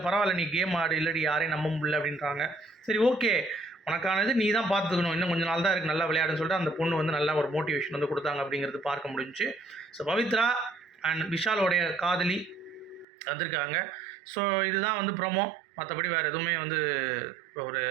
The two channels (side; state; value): left; drops out; at 13.1 s